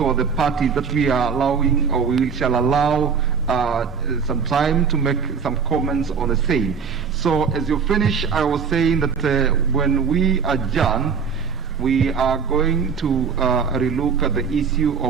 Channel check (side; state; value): left; quieter; 6.1 dB